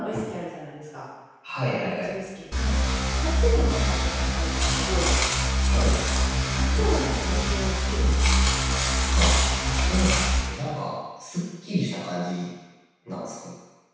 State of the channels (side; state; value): both; identical; correlation 1.00